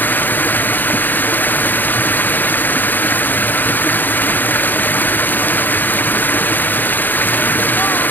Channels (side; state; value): right; late; 0.090 ms